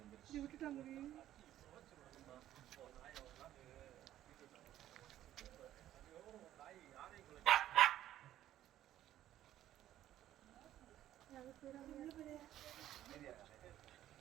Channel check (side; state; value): left; quieter; 12.7 dB